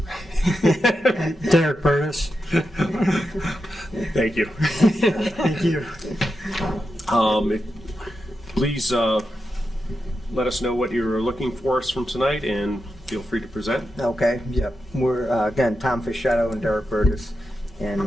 Derek Burtis. Thank you. Thank you. Please let us know what you're looking for us from tonight, and feel free to present. Okay, yep. We're, again, Tom Fischetto and Derek Burtis,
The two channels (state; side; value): normal; both; correlation 0.88